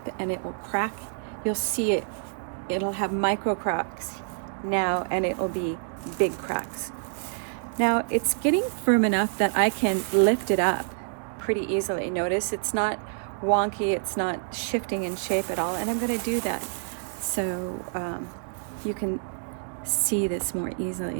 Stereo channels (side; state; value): left; silent; digital silence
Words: and it will crack. You'll see it. It'll have micro cracks now and it will be big cracks. Now it's getting firm enough that I can lift it up pretty easily. Notice it's not wonky, it's not shifting in shape at all, and I'm going to do that so you can see this more